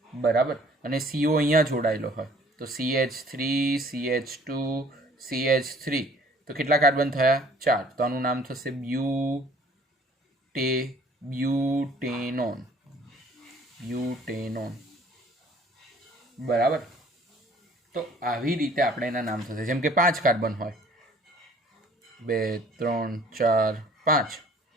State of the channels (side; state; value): both; normal; correlation 0.55